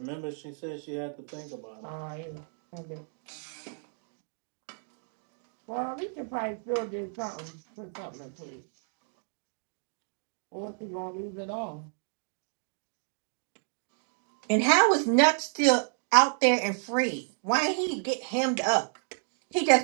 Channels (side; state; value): left; silent; 57 dB below the other